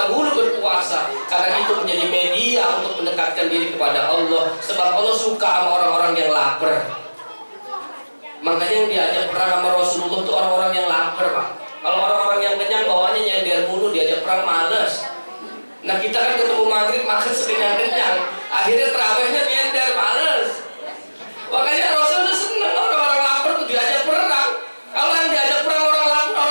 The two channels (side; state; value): both; inverted; correlation -1.00